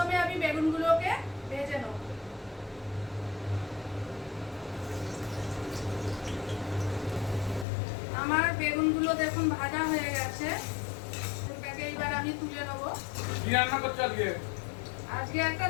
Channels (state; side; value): drops out; right; at 7.7 s